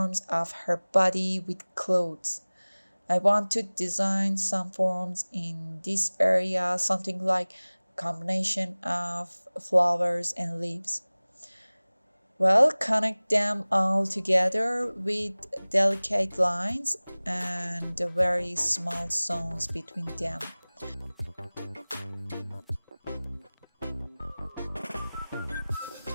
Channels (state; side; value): inverted; both; correlation -1.00